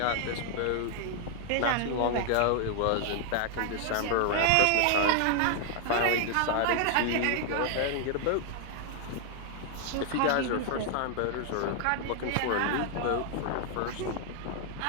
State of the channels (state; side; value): different; both; correlation 0.00